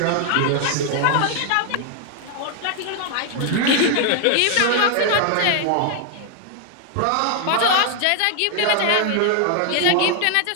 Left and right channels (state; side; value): different; both; correlation 0.00